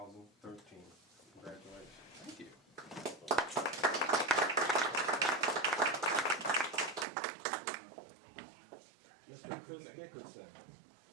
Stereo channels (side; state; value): left; drops out; at 7.1 s